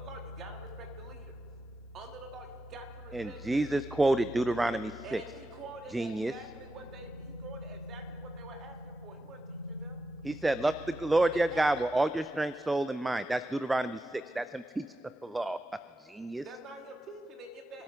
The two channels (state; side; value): normal; both; correlation 0.88